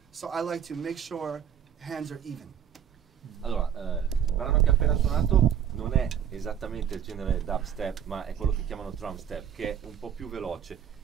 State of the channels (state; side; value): quieter; left; 8.9 dB